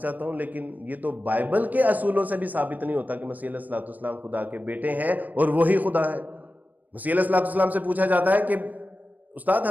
چاہتا ہوں، لیکن یہ تو بائبل کے اصولوں سے بھی ثابت نہیں ہوتا کہ مسیح علیہ الصلوۃ والسلام خدا کے بیٹے ہیں اور وہی خدا ہے۔ مسیح علیہ الصلوۃ والسلام سے پوچھا جاتا ہے کہ استاد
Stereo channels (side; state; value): left; late; 0.081 ms